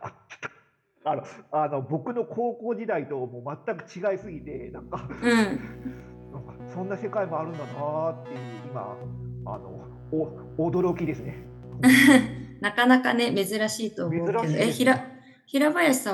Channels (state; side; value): identical; both; correlation 1.00